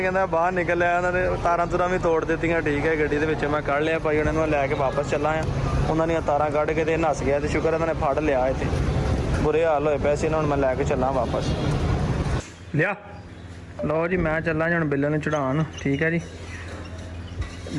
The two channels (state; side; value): identical; both; correlation 1.00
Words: कहता बाहर निकल लिया उन्होंने तारां तुरां भी तोड़ दित्तियां ठीक है गड्डी दे विच मैं कढ़ लिया भाई उन्होंने लैके वापस चला आ उन्होंने तारां कढ़ के ते नस गया तो शुक्र उन्होंने फड़ लिया इत्थे बुरे हाल होए पैसे हुण मैं लैके चला वापस लिया लो जी मैं चला जी हुण बिल्ले नूं चढ़ाउण ठीक है जी